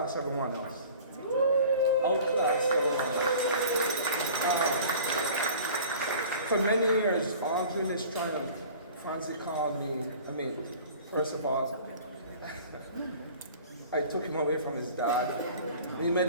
everyone else. Outclass everyone else. For many years, all during this triumph, Frantzdy called me, first of all, I took him away from his dad. We made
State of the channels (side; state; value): both; inverted; correlation -0.44